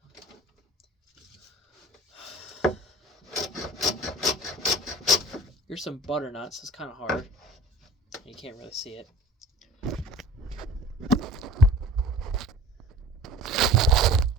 Here's some butternuts. It's kind of hard. You can't really see it.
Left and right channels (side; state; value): both; normal; correlation 0.41